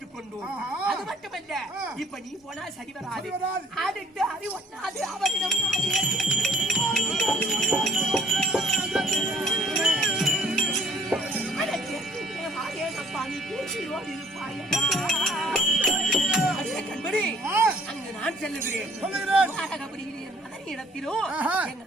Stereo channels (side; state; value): both; normal; correlation 0.58